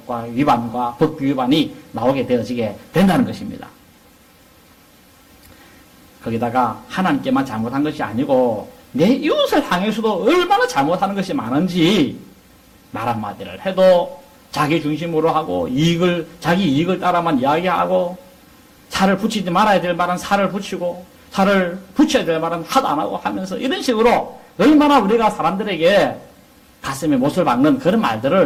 위반과 법규 위반이 나오게 되어지게 된다는 것입니다. 거기다가 하나님께만 잘못한 것이 아니고 내 이웃을 향해서도 얼마나 잘못하는 것이 많은지 말 한마디를 해도 자기 중심으로 하고 자기 이익을 따라만 이야기하고 살을 붙이지 말아야 될 말은 살을 붙이고 살을 붙여야 될 말은 하도 안 하고 하면서 이런 식으로 얼마나 우리가 사람들에게 가슴에 못을 박는 그런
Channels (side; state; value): both; identical; correlation 1.00